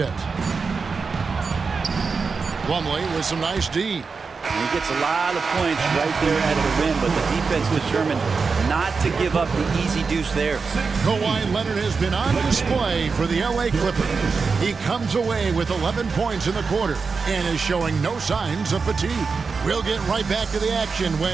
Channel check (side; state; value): left; quieter; 4.9 dB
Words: Plumlee with some nice D. And he gets a lot of points right there at the rim, but the defense determined not to give up the easy deuce there. Kawhi Leonard has been on display for the LA Clippers. He comes away with 11 points in the quarter and is showing no signs of fatigue. We'll get right back to the action